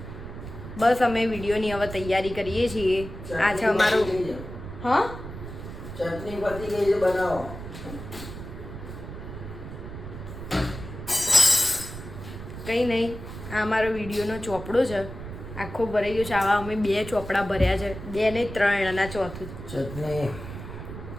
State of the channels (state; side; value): noise; right; rumble, 10 dB below the sound